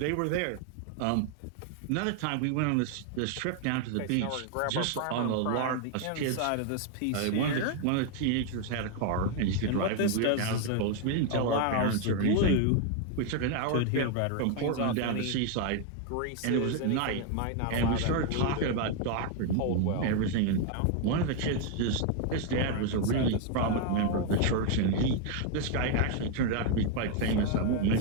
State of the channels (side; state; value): both; different; correlation 0.01